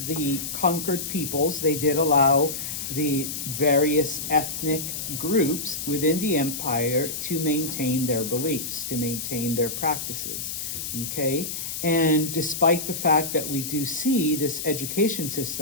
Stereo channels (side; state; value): left; noise; hiss, 5 dB below the sound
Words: conquered peoples, they did allow the various ethnic groups within the empire to maintain their beliefs, to maintain their practices, okay? And despite the fact that we do see this education